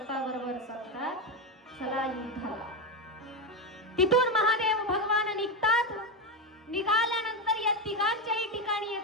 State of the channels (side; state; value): both; normal; correlation 0.12